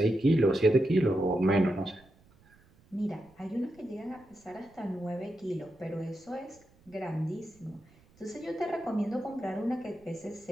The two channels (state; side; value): noise; right; rumble, 29 dB below the sound